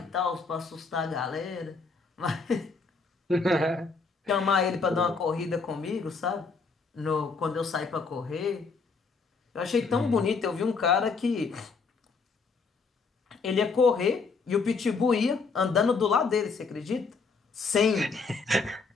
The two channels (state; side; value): quieter; right; 4.6 dB